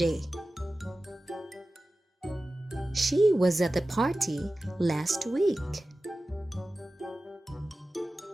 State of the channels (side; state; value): both; normal; correlation 0.95